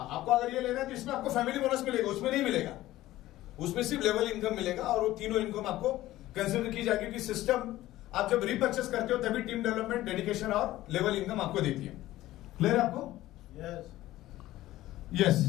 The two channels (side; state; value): right; quieter; 15.7 dB